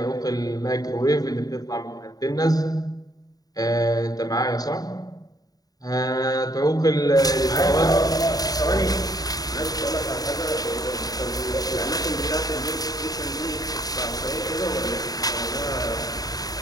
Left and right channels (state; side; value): late; right; 0.18 ms